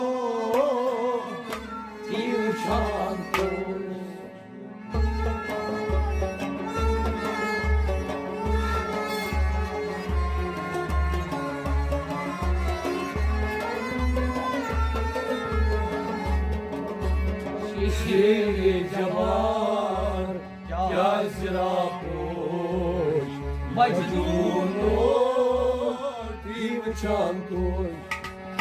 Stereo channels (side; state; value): both; identical; correlation 1.00